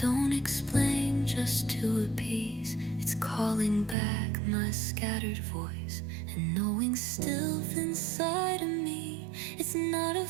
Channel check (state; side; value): drops out; left; at 4.0 s